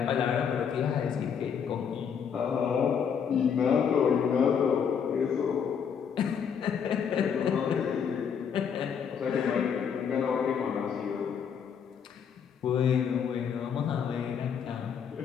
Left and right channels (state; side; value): quieter; right; 7.3 dB